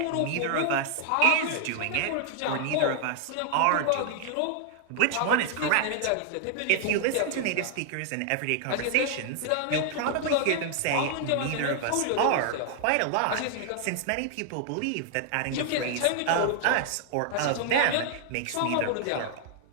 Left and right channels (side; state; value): both; different; correlation 0.00